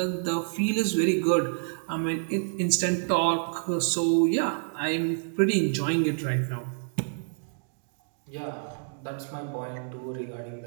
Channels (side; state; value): left; silent; digital silence